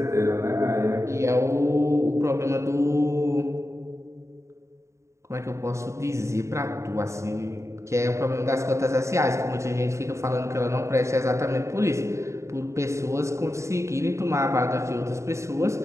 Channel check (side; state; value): left; late; 0.14 ms